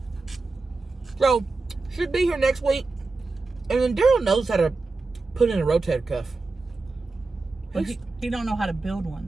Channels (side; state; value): left; quieter; 3.7 dB